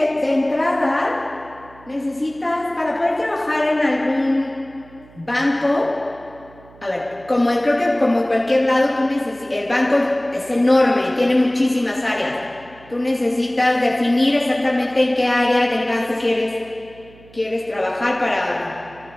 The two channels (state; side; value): noise; right; hum, 24 dB below the sound